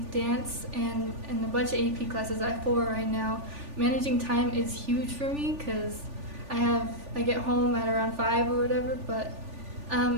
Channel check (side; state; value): left; late; 3.4 ms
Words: dance and a bunch of AP classes, I have 4 right now, managing time is huge for me, because I get home at around 5 or whatever, but